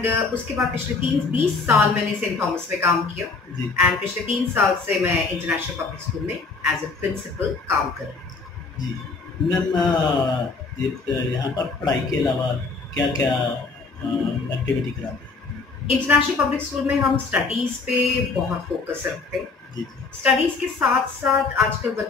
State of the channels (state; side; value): quieter; right; 4.3 dB